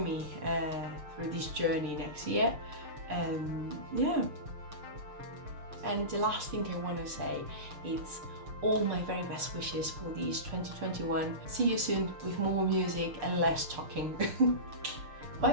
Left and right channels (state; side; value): late; left; 6.6 ms